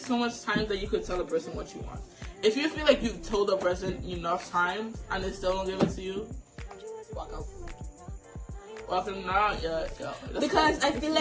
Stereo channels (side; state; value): both; identical; correlation 1.00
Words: much time that you could tell a person what you want. If you feel like you've told a person enough time and they still don't give it to you, walk out. Walk them down, yeah. Because I feel